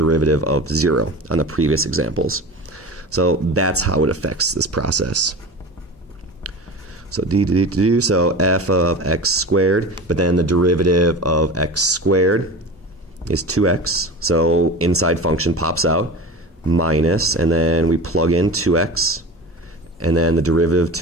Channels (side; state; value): both; normal; correlation 0.32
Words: of 0 on the previous examples. So that's how it affects this process. So so f of x squared, but then the derivative of x squared is 2x. So inside function pops out, minus, and then we plug in 2x, and then the derivative of